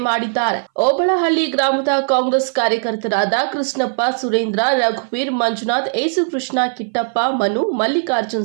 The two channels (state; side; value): silent; left; 62 dB below the other